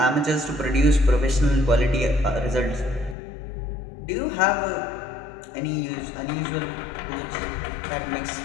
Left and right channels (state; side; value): drops out; right; at 3.2 s